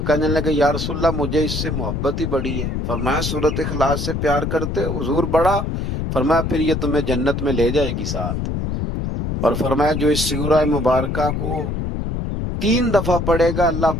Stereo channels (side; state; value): left; noise; rumble, 2 dB below the sound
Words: کہنے لگے یا رسول اللہ مجھے اس سے محبت ہی بڑی ہے۔ فرمایا سورۃ اخلاص سے پیار کرتے ہو؟ حضور بڑا؟ فرمایا پھر یہ تمہیں جنت میں لے جائے گی ساتھ۔ اور فرمایا جو اس سورہ مبارکہ کو 3 دفعہ پڑھے گا اللہ